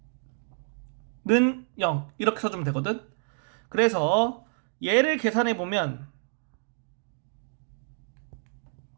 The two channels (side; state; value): left; silent; 59 dB below the other